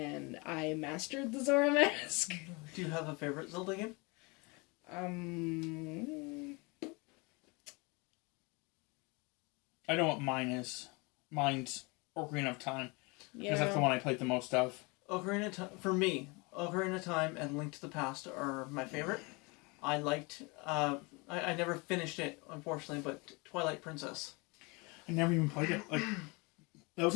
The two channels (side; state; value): right; quieter; 28.0 dB